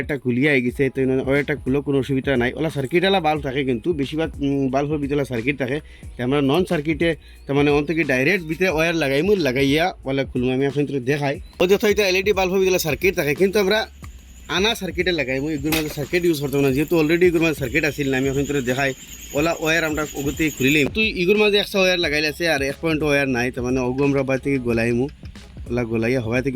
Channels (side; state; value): both; identical; correlation 1.00